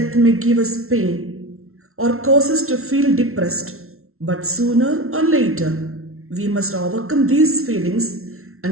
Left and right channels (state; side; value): late; left; 0.62 ms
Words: may give us pain or cause us to feel depressed, but sooner or later, we must overcome these feelings